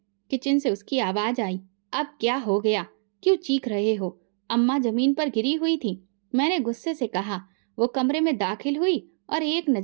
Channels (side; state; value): left; silent; 61 dB below the other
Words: किचन से उसकी आवाज आई। अब क्या हो गया? क्यों चीख रहे हो? अम्मा जमीन पर गिरी हुई थी। मैंने गुस्से से कहा। वो कमरे में दाखिल हुई और एक